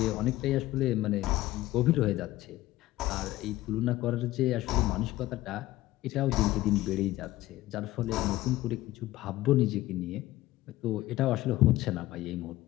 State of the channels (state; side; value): quieter; right; 16.6 dB